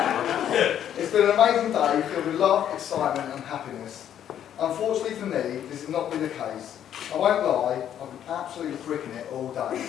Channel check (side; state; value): right; quieter; 10.1 dB